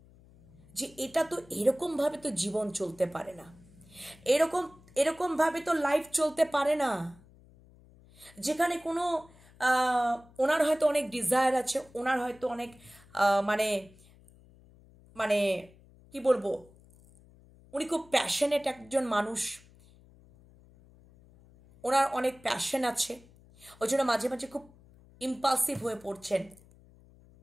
যে এটা তো এরকমভাবে তো জীবন চলতে পারে না, এরকমভাবে তো লাইফ চলতে পারে না, যেখানে কোনো ওনার হয়তো অনেক ডিজায়ার আছে, ওনার হয়তো অনেক মানে মানে কি বলবো, উনি খুব প্যাশনেট একজন মানুষ, ওনার অনেক প্যাশন আছে, ওই জন্য মাঝে মাঝে খুব ইম্পালসিভ হয়ে পড়ছেন।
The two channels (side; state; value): left; noise; hum, 26 dB below the sound